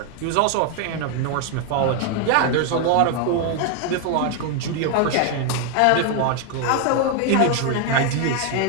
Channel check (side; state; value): both; different; correlation 0.01